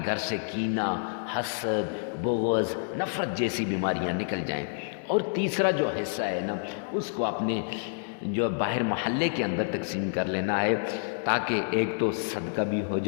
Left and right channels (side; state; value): right; silent; 59 dB below the other